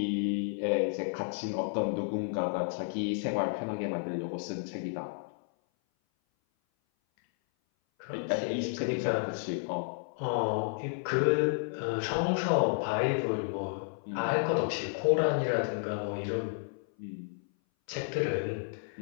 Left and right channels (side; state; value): right; silent; 57 dB below the other